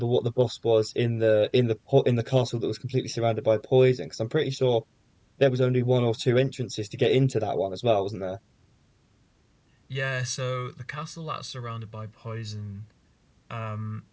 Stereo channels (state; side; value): identical; both; correlation 1.00